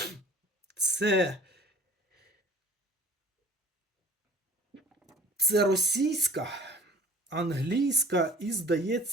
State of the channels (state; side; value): normal; both; correlation 0.48